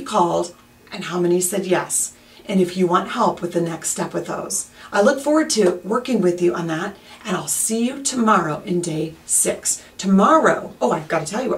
called and how many said yes, and if you want help with the next step with those. I look forward to working with you on that, and I'll see you tomorrow in day 6. Tomorrow, oh, I've got to tell you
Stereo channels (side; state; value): both; identical; correlation 1.00